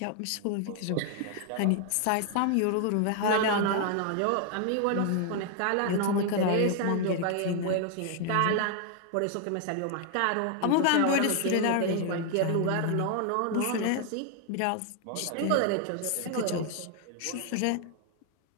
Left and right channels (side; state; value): both; different; correlation 0.00